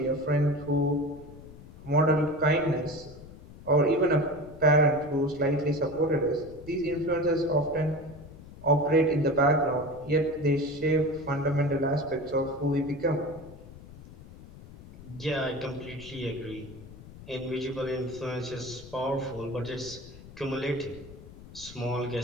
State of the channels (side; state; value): left; noise; rumble, 17 dB below the sound